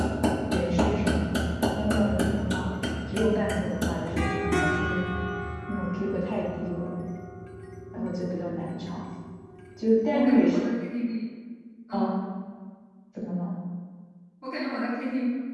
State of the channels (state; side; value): identical; both; correlation 1.00